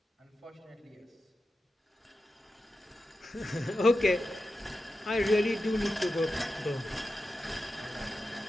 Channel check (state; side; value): normal; both; correlation 0.91